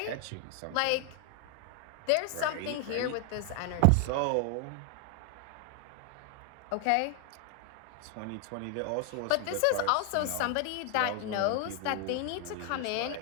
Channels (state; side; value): different; both; correlation 0.00